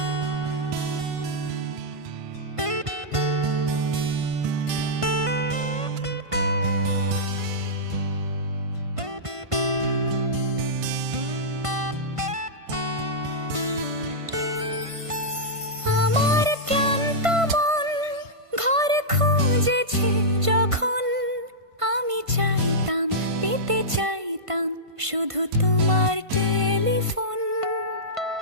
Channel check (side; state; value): left; late; 1.5 ms